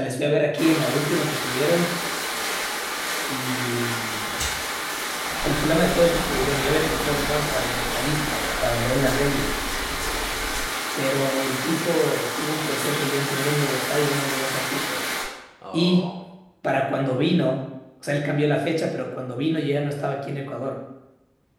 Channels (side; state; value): both; identical; correlation 1.00